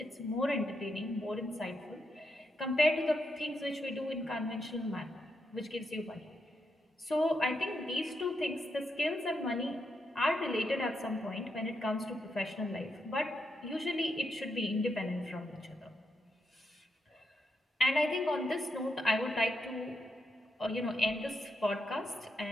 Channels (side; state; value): both; normal; correlation 0.82